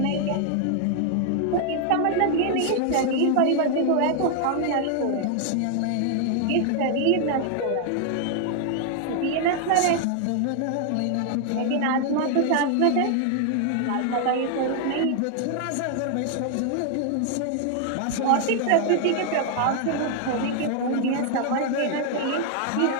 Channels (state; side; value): different; both; correlation 0.00